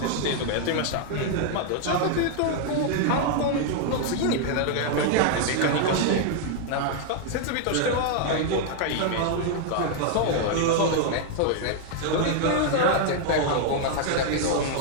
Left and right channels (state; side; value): different; both; correlation 0.00